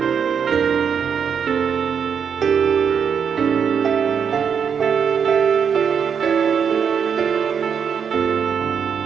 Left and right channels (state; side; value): quieter; left; 7.0 dB